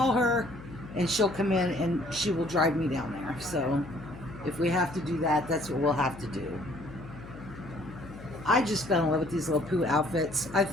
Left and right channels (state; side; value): noise; left; hum, 15 dB below the sound